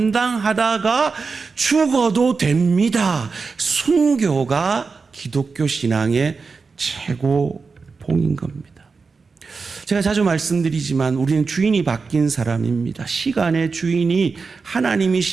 죽어도 됩니다. 순교가 기독교 신앙의 최고봉인 겁니다. 제가 자주 말씀드리지만 우리는 주인이 바뀐 사람입니다. 시간의 주인이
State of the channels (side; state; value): left; quieter; 4.7 dB